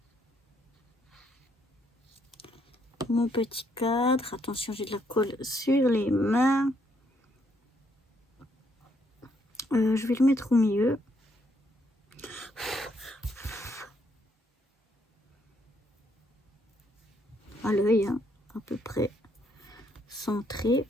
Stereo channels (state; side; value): normal; both; correlation 0.73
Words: mon petit cadre. Attention, j'ai de la colle sur les mains. Je vais le mettre au milieu. À l'œil, hein, à peu près centré.